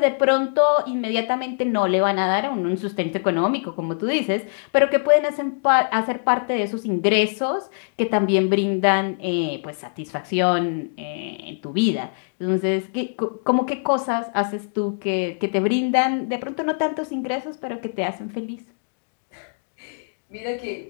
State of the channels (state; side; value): silent; right; digital silence